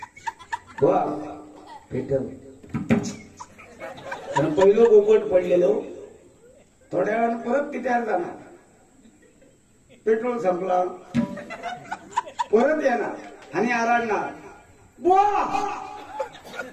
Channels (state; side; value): identical; both; correlation 1.00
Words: भेटल कारण पहिलं पोपट पडलेलो थोड्या वेळानं परत तिथे जाणार पेट्रोल संपला परत येणार आणि आराडणार बुवा